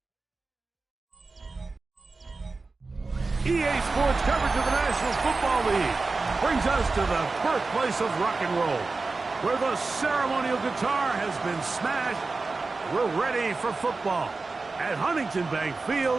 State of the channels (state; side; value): quieter; left; 3.8 dB